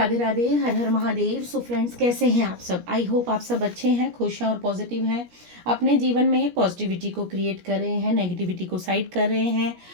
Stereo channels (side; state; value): left; late; 17 ms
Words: Radhe, हर हर Mahadev. So friends, कैसे हैं आप सब? आई होप आप सब अच्छे हैं, खुश हैं और पॉजिटिव हैं। अपने जीवन में पॉजिटिविटी को क्रिएट कर रहे हैं, नेगेटिविटी को साइड कर रहे हैं